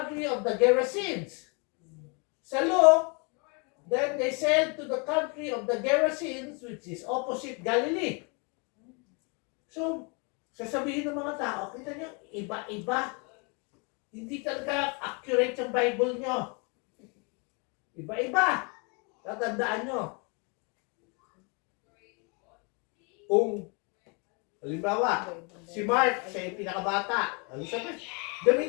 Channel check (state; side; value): quieter; right; 33.4 dB